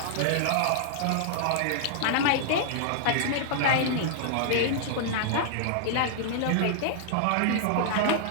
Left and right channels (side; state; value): both; different; correlation -0.01